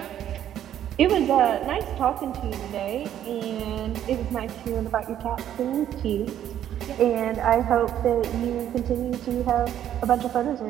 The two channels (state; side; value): quieter; left; 10.8 dB